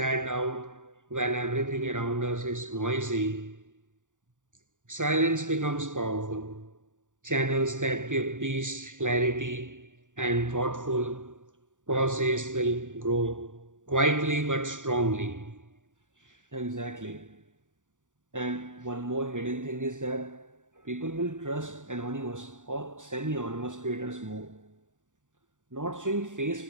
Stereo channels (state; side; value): late; left; 0.86 ms